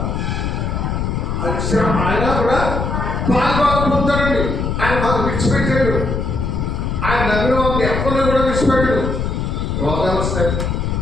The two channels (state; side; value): noise; left; rumble, 1 dB below the sound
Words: పాల్గొన పొందుతాడండి. ఆయన మాకు విడిచిపెట్టాడు. ఆయన నమ్మిన వాళ్ళని ఎక్కడో కూడా విడిచిపెట్టాడు. రోగాలు వస్తాయి,